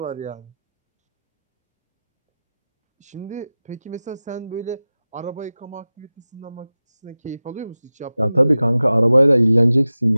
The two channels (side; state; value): both; inverted; correlation -0.95